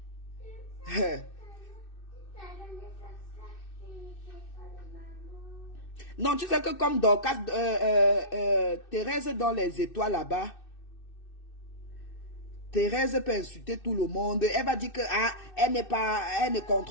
Non, tu sais que comme Dorcas, Thérèse dans les étoiles là-bas, Thérèse peut insulter tout le monde. Elle va dire que elle ne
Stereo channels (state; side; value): late; right; 2.6 ms